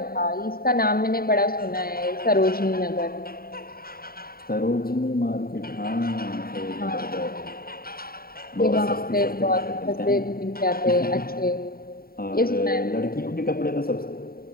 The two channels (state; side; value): late; right; 0.43 ms